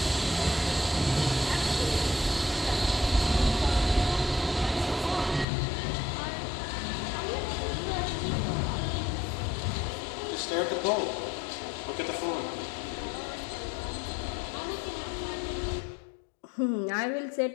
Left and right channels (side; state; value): right; drops out; at 5.5 s